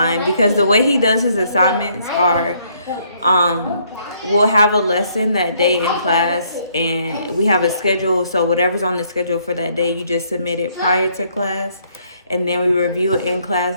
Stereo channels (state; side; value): inverted; both; correlation -0.68